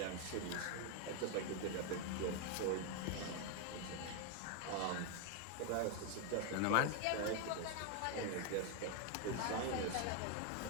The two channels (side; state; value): both; different; correlation 0.01